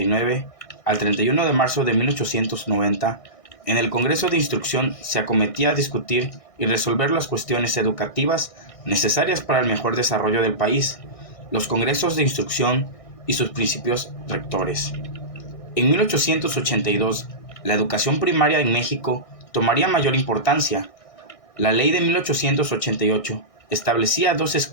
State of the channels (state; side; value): late; right; 1.6 ms